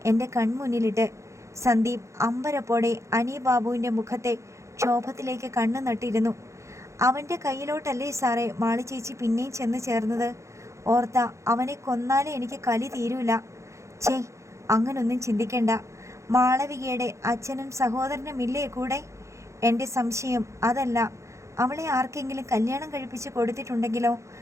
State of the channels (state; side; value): late; left; 0.14 ms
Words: എൻ്റെ കൺമുന്നിലിട്ട്. സന്ദീപ് അമ്പരപ്പോടെ അനി ബാബുവിൻ്റെ മുഖത്തെ ക്ഷോഭത്തിലേക്ക് കണ്ണു നട്ടിരുന്നു. അവൻ്റെ കയ്യിലോട്ടല്ലേ സാറേ മാളിച്ചേച്ചി പിന്നെയും ചെന്ന് ചേർന്നത്? ഓർത്ത അവനെ കൊന്നാലേ എനിക്ക് കലി തീരൂല. ഛേ, അങ്ങനൊന്നും ചിന്തിക്കണ്ട. മാളവികയുടെ അച്ഛനും സഹോദരനും ഇല്ലേ കൂടെ? എൻ്റെ സംശയം അതല്ല, അവളെ ആർക്കെങ്കിലും കല്യാണം കഴിപ്പിച്ച് കൊടുത്തിട്ടുണ്ടെങ്കിലോ?